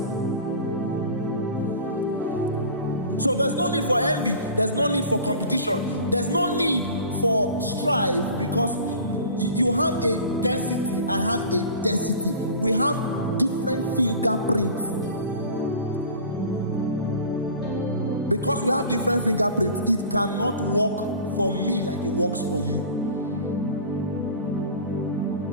So there's no need for envy. There's no need for competition. There's no need for strife, because you have a density. I have a density. We have different fingerprints. Because we have different fingerprints, it cannot work for me like it works for you.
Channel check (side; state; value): both; inverted; correlation -0.39